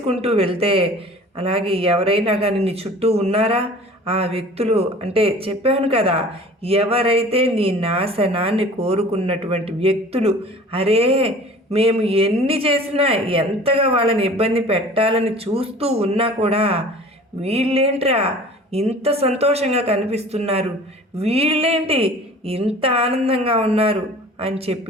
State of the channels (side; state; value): both; normal; correlation 0.45